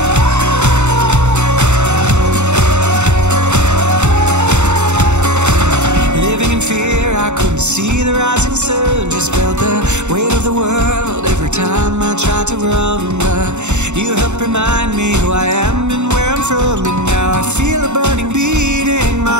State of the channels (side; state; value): left; late; 0.83 ms